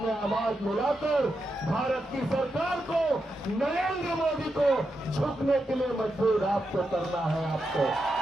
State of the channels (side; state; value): both; normal; correlation 0.86